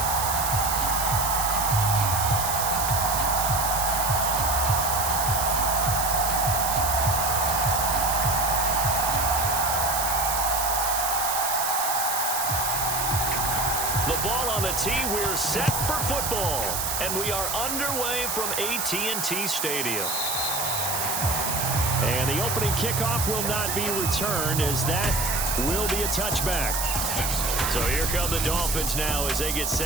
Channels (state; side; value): noise; right; hiss, 1 dB below the sound